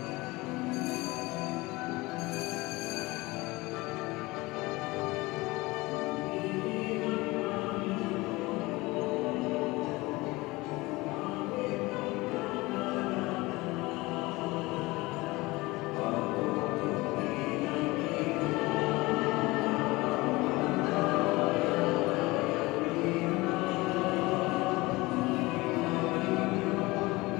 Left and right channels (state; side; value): quieter; right; 21.7 dB